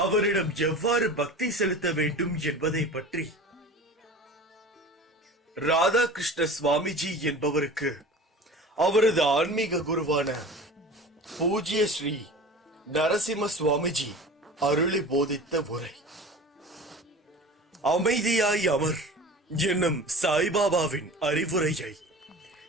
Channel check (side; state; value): both; normal; correlation 0.37